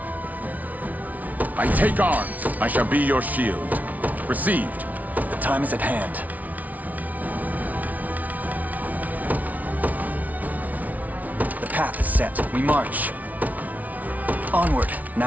I take arms. I shall be your shield. Received. The time is at hand. The path is set. We march. Onward.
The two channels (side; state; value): left; late; 0.074 ms